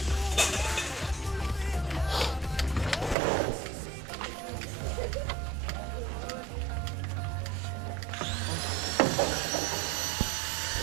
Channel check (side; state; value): left; drops out; at 3.2 s